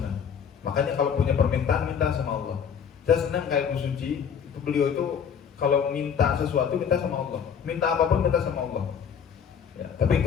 Makanya kalau punya permintaan, minta sama Allah. Saya senang kayak Bu Suci, itu beliau itu kalau minta sesuatu, minta sama Allah. Minta apapun, minta sama Allah. Ya, tapi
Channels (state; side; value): quieter; right; 7.4 dB